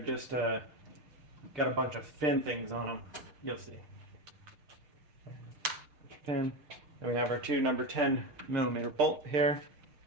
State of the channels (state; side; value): late; left; 6.6 ms